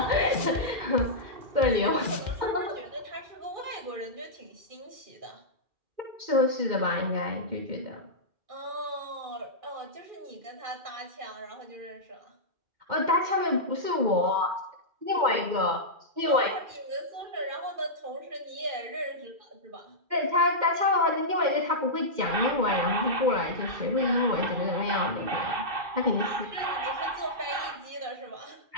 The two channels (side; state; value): left; late; 2.1 ms